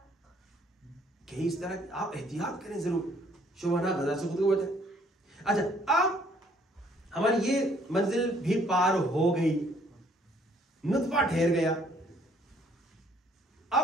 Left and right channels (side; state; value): both; normal; correlation 0.62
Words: کہ اس طرح آپ احتیاط کریں ضرور, شبہہ غذا سے خود کو بچائیں. اچھا اب ہماری یہ منزل بھی پار ہو گئی, نطفہ ٹھہر گیا,